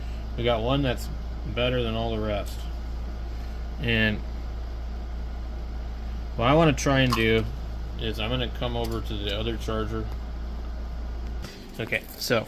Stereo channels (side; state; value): both; identical; correlation 1.00